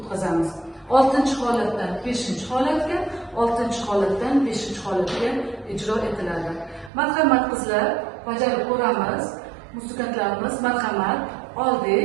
6-holatdan 5-holatga, 6-holatdan 5-holatga ijro etiladi. Marhamat qizlar, bajarib ko'ramiz. Musiqantlarimiz marhamat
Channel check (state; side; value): drops out; left; at 6.9 s